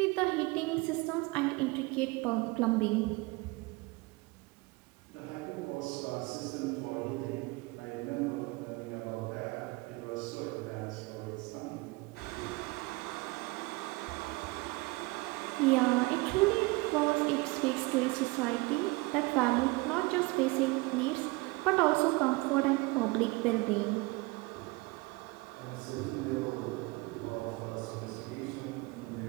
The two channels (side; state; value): left; quieter; 24.5 dB